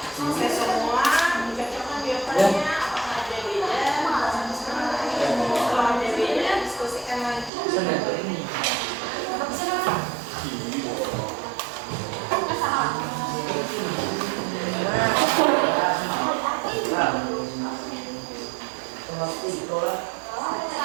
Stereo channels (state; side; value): drops out; left; at 7.5 s